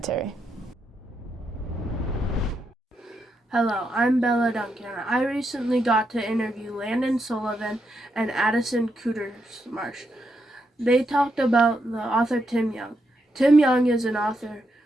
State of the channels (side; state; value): both; normal; correlation 0.82